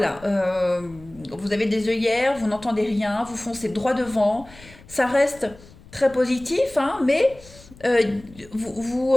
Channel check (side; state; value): left; noise; rumble, 22 dB below the sound